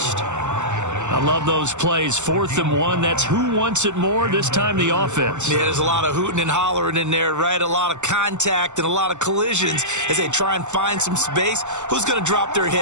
I love those plays. 4th and 1. That's who wants it more, this time the offense. Yeah, there's a lot of hooting and hollering in there, right? A lot of contact and a lot of collisions as they try and find some space. Who's going to drop their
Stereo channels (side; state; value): left; late; 0.84 ms